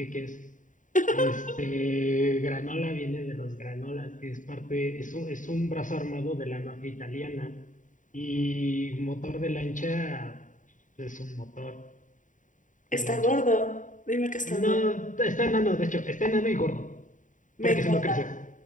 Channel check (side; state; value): right; late; 0.37 ms